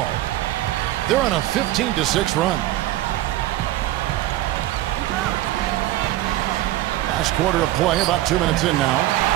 They're on a 15-6 run. Last quarter of play, about 2 minutes in now.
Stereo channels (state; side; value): quieter; left; 15.4 dB